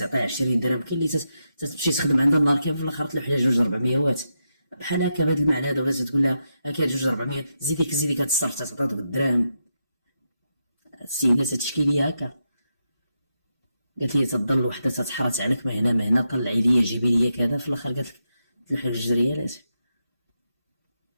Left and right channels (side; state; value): both; inverted; correlation -0.85